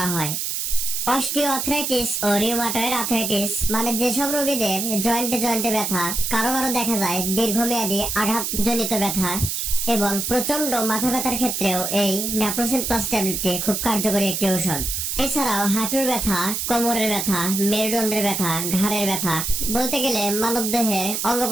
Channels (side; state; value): right; noise; hiss, 2 dB below the sound